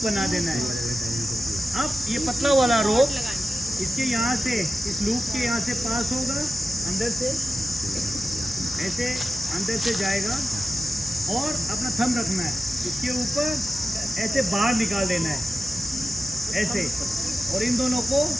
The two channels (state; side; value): normal; both; correlation 0.93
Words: बना देना है अब ये पतला वाला रोप इसके यहाँ से इस लूप के यहाँ से पास होगा अंदर से ऐसे अंदर से जाएगा और अपना थंब रखना है इसके ऊपर ऐसे बाहर निकाल देना है ऐसे और इन दोनों को